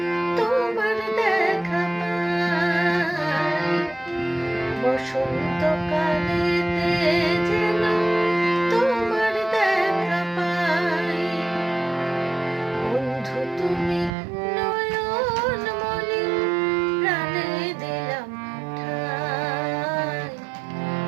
তোমার দেখা পাই, বসন্ত কালেতে যেন তোমার দেখা পাই। বন্ধু তুমি নয়ন মনি প্রাণে দিলাম ঠাই,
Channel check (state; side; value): drops out; left; at 14.1 s